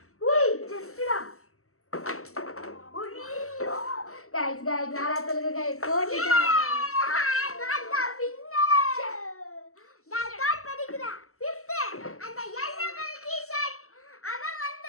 உய் ஜஸ்டா. ஐயோ गाइस யாரா சொல்லுங்க गाइस போட்டுட்டா. நான் தான் வின்னர். நான் டாட் படிக்கிறேன் 5th அந்த yellow கலர் டி-ஷர்ட் அவன்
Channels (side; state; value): right; late; 0.63 ms